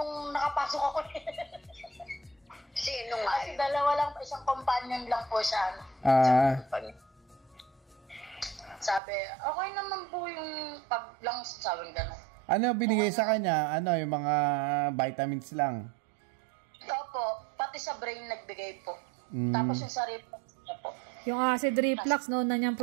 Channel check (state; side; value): drops out; left; at 9.0 s